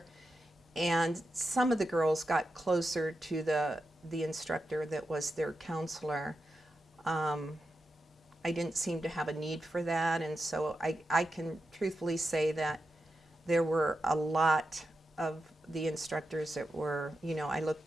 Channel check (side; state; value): both; normal; correlation 0.89